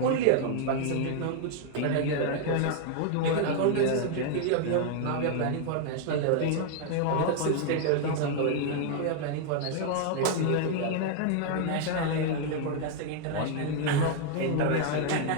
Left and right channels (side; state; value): both; different; correlation 0.00